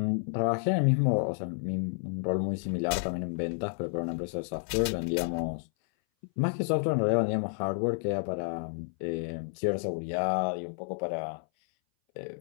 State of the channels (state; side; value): silent; right; 58 dB below the other